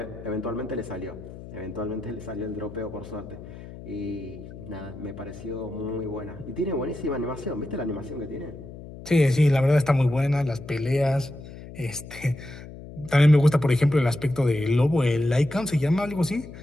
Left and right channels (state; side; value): noise; left; hum, 14 dB below the sound